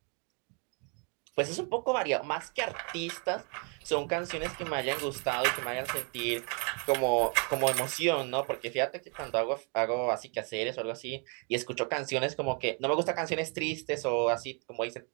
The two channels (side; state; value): left; quieter; 37.1 dB